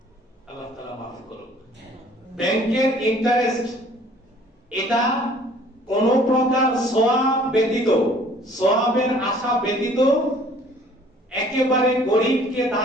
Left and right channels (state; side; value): normal; both; correlation 0.55